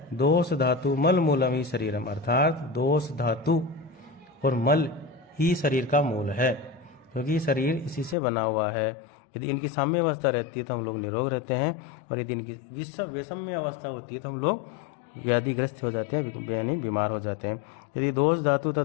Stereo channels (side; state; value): right; drops out; at 8.2 s